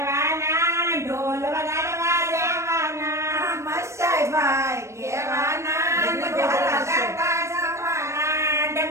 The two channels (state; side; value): late; left; 0.14 ms